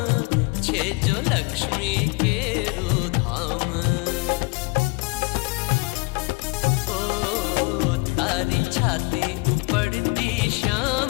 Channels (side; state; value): right; quieter; 27.9 dB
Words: छे जो लक्ष्मी के धाम. ओ तारी छाती उपड़ती